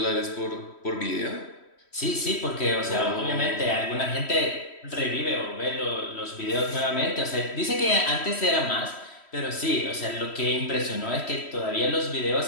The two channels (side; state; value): right; late; 3.1 ms